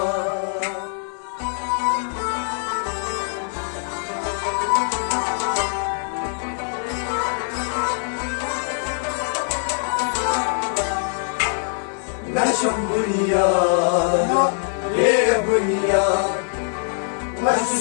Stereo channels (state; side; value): silent; right; digital silence